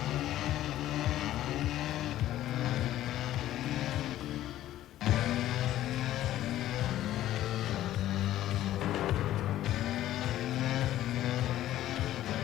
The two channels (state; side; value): quieter; right; 13.5 dB